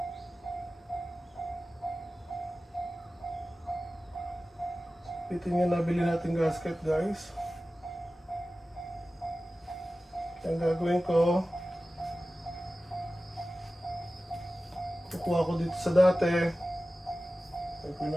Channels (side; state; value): both; normal; correlation 0.96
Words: Bitin yung nabili natin gasket guys. Ang gagawin ko, kukuha ko dito sa dati. Gagawin